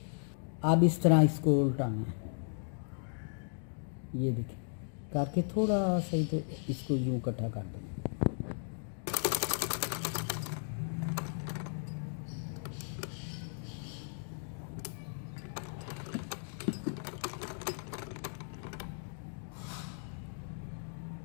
अब इस तरह इसको उल्टाना है। ये देखिए करके थोड़ा सही, तो इसको यूँ इकट्ठा कर देंगे।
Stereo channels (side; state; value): right; silent; digital silence